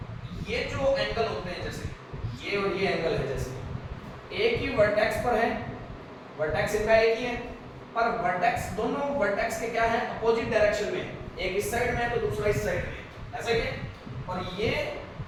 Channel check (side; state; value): both; identical; correlation 1.00